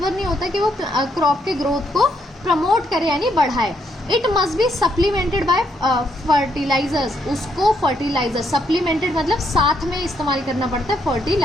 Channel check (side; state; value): both; normal; correlation 0.75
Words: नहीं होता कि वो क्रॉप के ग्रोथ को प्रमोट करे यानी बढ़ाए। It must be supplemented by fertilisers. उसको फर्टिलाइजर सप्लीमेंटेड मतलब साथ में इस्तेमाल करना पड़ता है